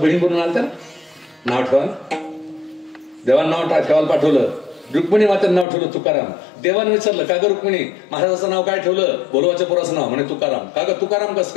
म्हणून आलत्या ना, नाव ठेवा. देवानं नाव ठेवायला पाठवलं, रुक्मिणी मातेनं नाव ठेवलं तुकाराम. देवानं विचारलं का ग रुक्मिणी महाराजाचं नाव काय ठेवलं? बोलोबाच्या पोराचं नाव म्हणे तुकाराम. का ग तुकाराम कस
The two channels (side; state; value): right; drops out; at 5.7 s